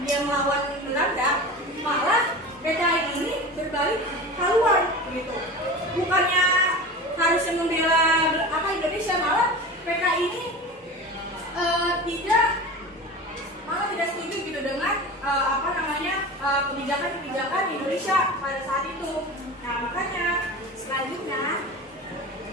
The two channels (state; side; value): normal; both; correlation 0.32